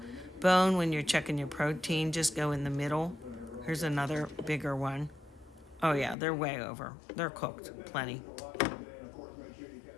bone when you're checking your protein, just go in the middle. Here's another bigger one. Oh yeah, they're way over. They're cooked, plenty.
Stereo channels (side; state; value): right; drops out; at 6.2 s